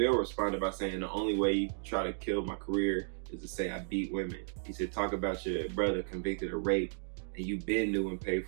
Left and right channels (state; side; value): silent; left; digital silence